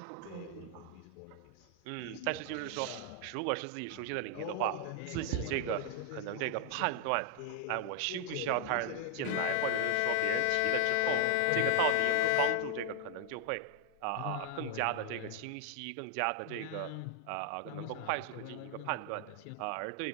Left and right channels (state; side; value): different; both; correlation 0.00